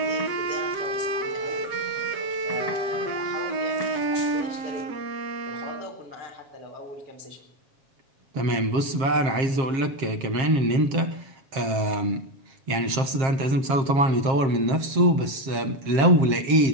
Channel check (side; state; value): left; late; 7.5 ms